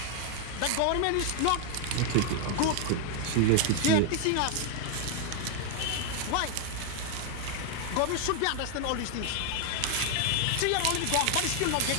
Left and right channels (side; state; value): both; different; correlation 0.00